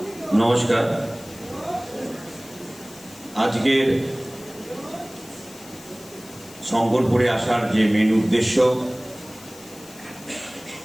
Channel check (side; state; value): left; noise; hiss, 19 dB below the sound